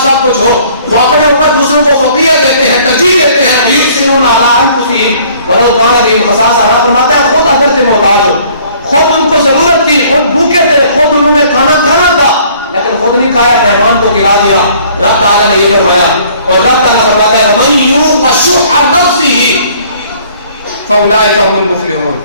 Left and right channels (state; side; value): inverted; both; correlation -0.57